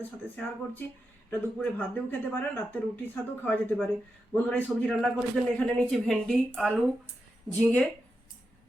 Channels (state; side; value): normal; both; correlation 0.88